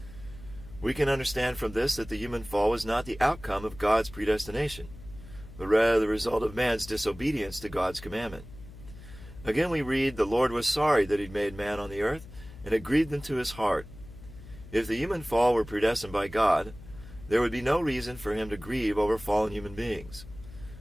We can understand from this that the human fall was not the outcome of God's predestination, but rather the result of man's disobedience to God's commandment. Again we read, "The Lord was sorry that he'd made man on the earth, and it grieved him to his heart." If the human fall were predestined by God, there would be no reason for him to grieve over fallen human beings,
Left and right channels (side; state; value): left; noise; hum, 17 dB below the sound